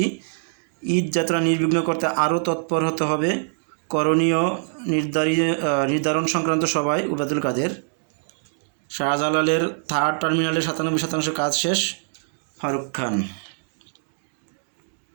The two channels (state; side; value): silent; left; digital silence